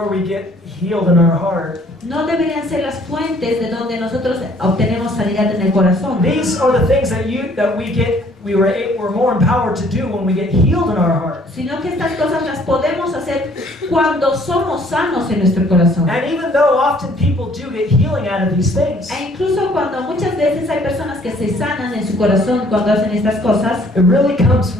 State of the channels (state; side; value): normal; both; correlation 0.60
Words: we get healed in our heart. no deberían ser las fuentes de donde nosotros obtenemos sanidad en el corazón. These are the things that we get we're more empowered to do when we get healed in our heart. sino que estas cosas las podemos hacer cuando somos sanos en nuestro corazón. And even though often people do get healing out of these things, E incluso cuando muchas veces hay personas que se sanan en su corazón cuando hacen estas cosas, it really comes